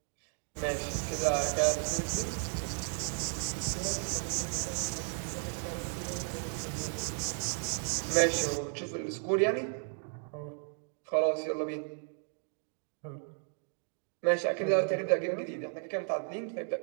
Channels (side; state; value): left; silent; 55 dB below the other